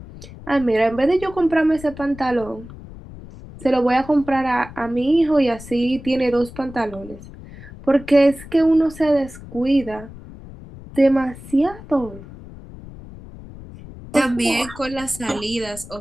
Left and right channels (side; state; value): left; noise; rumble, 16 dB below the sound